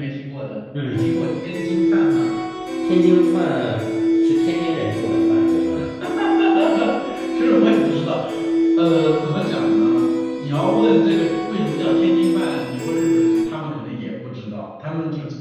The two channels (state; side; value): identical; both; correlation 1.00